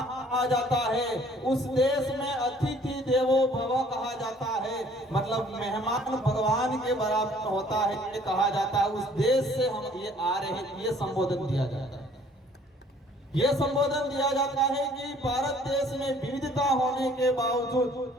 कहा जाता है, उस देश में अतिथि देवो भव कहा जाता है, मतलब मेहमान भगवान के बराबर होता है ये कहा जाता है। उस देश से हम ये आ रहे हैं, ये संबोधन दिया जाता है। ये संबोधन दिया जाता है कि भारत देश में विविधता होने के बावजूद,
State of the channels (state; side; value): normal; both; correlation 0.57